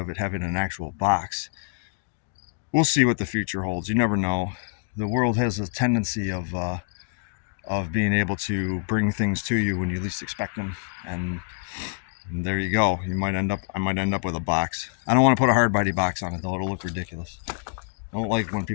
it having an actual box. We'll see what the future holds. You never know. The world has a tendency of being able to bring things to you when you least expect them, and there you go. I might end up with a box. I don't want to put a hard body box on it though. It'll look ridiculous. I don't like when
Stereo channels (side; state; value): right; silent; digital silence